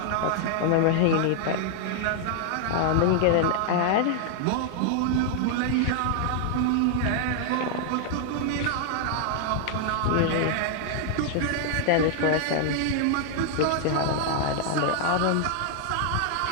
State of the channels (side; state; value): both; different; correlation 0.00